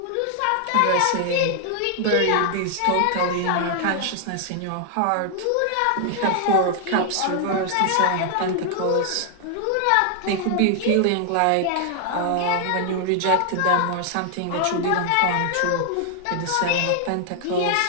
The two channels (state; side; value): different; both; correlation 0.00